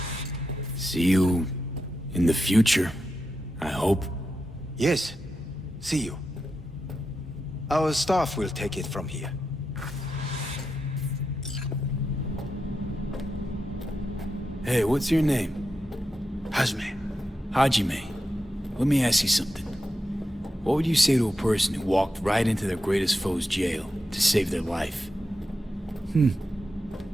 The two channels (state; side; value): normal; both; correlation 0.88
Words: See you in the future, I hope. Yes, see you. Our staff will take it from here. Hey, what's your name? Hajime. Let me ask you something. What would you say to a person who walked right into their greatest foe's jail to save their life?